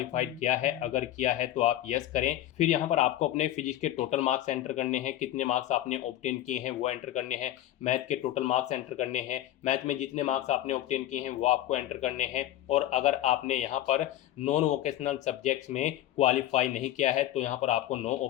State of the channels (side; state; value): right; quieter; 13.3 dB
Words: किया है। अगर किया है तो आप यस करें। फिर यहाँ पर आपको अपने फिजिक्स के टोटल मार्क्स एंटर करने हैं, कितने मार्क्स आपने ऑब्टेन किए हैं वो एंटर करने हैं। मैथ के टोटल मार्क्स एंटर करने हैं, मैथ में जितने मार्क्स आपने ऑब्टेन किए हैं वो आपको एंटर करने हैं। और अगर आपने यहाँ पर नॉन वोकेशनल सब्जेक्ट्स में क्वालिफाई नहीं किया है तो यहाँ पर आपको नो